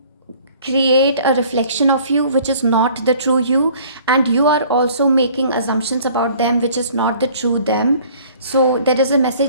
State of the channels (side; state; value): both; inverted; correlation -0.53